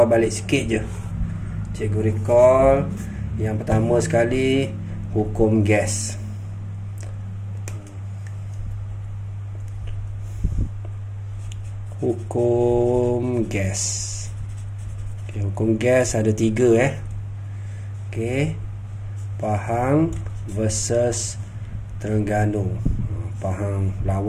balik sikit je. Cikgu recall. Yang pertama sekali, hukum gas. Hukum gas. Hukum gas ada 3 Okey, Pahang versus Terengganu. Pahang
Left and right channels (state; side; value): identical; both; correlation 1.00